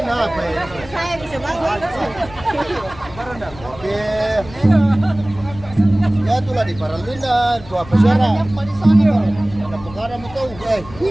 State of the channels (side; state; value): left; noise; rumble, 17 dB below the sound